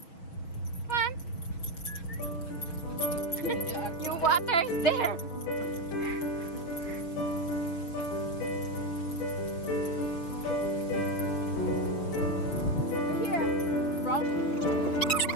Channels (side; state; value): right; late; 6.2 ms